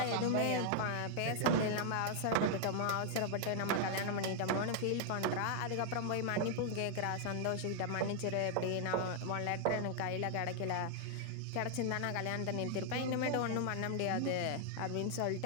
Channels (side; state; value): both; different; correlation 0.00